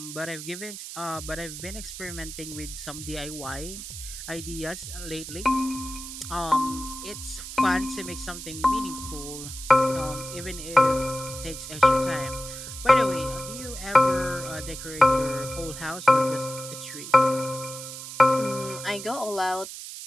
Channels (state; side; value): noise; right; hiss, 10 dB below the sound